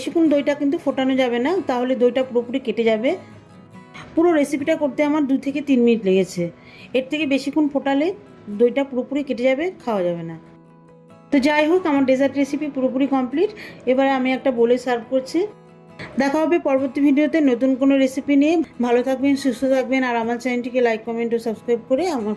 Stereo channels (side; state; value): both; identical; correlation 1.00